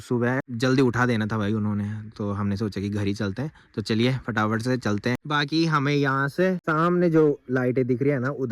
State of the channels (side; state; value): both; identical; correlation 1.00